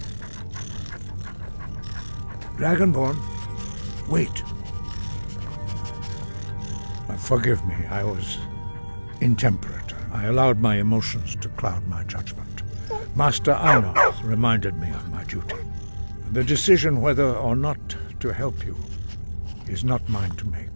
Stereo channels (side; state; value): both; inverted; correlation -1.00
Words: Dragonborn, wait. Forgive me, I was intemperate. I allowed my emotions to cloud my judgment. Master Arnold reminded me of my duty. The decision whether or not to help you is not mine to make.